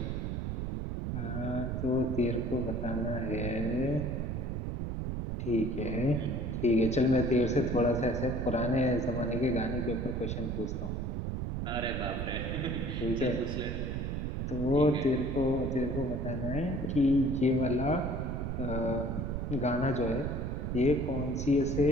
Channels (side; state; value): right; noise; rumble, 2 dB below the sound